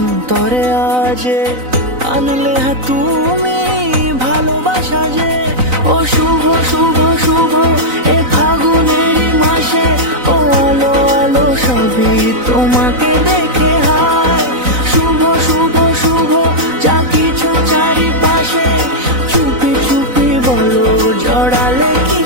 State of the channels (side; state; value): left; late; 4.0 ms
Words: আজে আনলে তুমি ভালোবাসা যে ও শুভ শুভ শুভ এ ফাগুনেরই মাসে ও আলো আলো সবই তোমাকে দেখে হায় শুভ শুভ শুভ যা কিছু চারিপাশে চুপি চুপি বলো জড়ালে কি